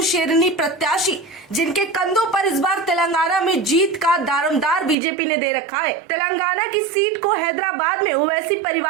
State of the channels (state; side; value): drops out; left; at 5.0 s